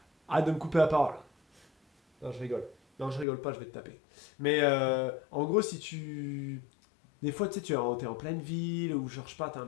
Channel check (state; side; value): drops out; right; at 3.2 s